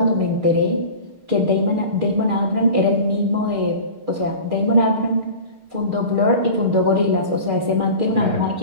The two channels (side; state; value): left; late; 6.5 ms